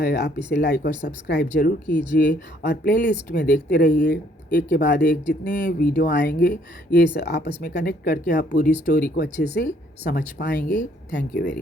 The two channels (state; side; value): normal; both; correlation 0.65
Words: आप इसे लाइक और सब्सक्राइब ज़रूर कीजिए और प्लेलिस्ट में देखते रहिए, एक के बाद एक जितने वीडियो आएंगे ये आपस में कनेक्ट करके आप पूरी स्टोरी को अच्छे से समझ पाएंगे। Thank you